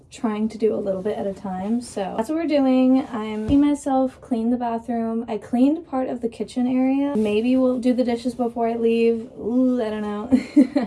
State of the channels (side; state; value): both; identical; correlation 1.00